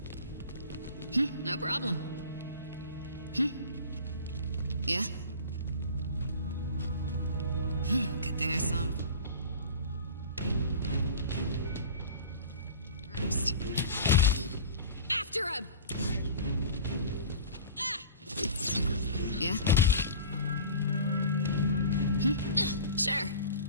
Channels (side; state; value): both; inverted; correlation -0.38